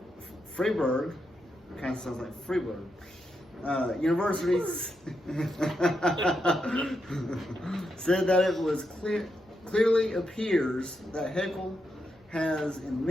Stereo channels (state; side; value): normal; both; correlation 0.84